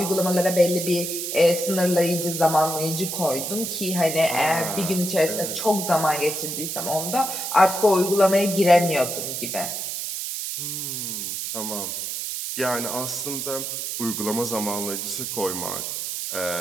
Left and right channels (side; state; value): right; noise; hiss, 4 dB below the sound